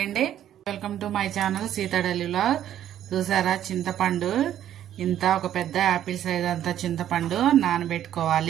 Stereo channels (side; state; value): left; quieter; 11.1 dB